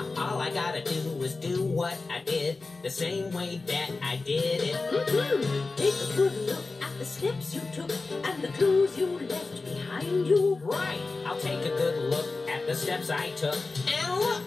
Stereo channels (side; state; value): right; quieter; 3.7 dB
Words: all I gotta do is do what I did the same way that I did it. Take a good look at the steps you took and the clues you left behind you. Right, I'll take a good look at the steps I took. And look,